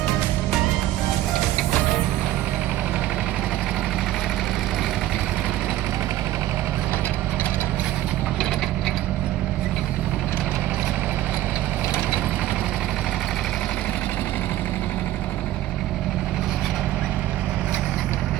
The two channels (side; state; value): left; quieter; 14.4 dB